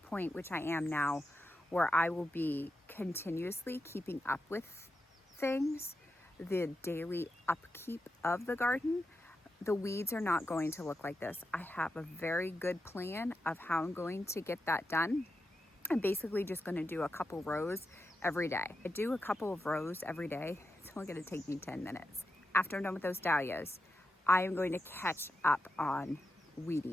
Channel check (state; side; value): normal; both; correlation 0.88